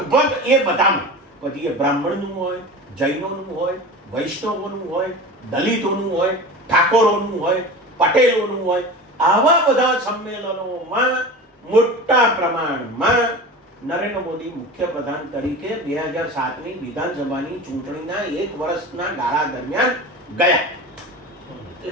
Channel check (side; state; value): both; normal; correlation 0.32